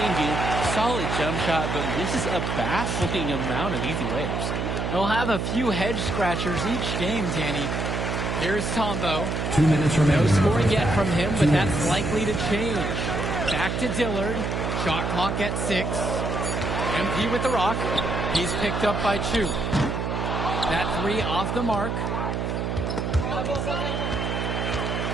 Solid jump shot, but misses a baffling amount of easy layups. They'll have a few head scratchers each game, Danny. Here's Tombo. 2 minutes remaining. No scoring yet from him, but that's likely to change. Back to Dillard. Shot clock at 6. MP with the rock. He's picked up by Chu. That three off the mark.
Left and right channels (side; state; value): right; noise; hum, 1 dB below the sound